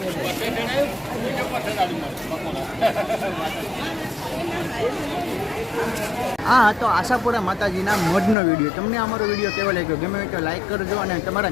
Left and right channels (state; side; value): drops out; right; at 8.3 s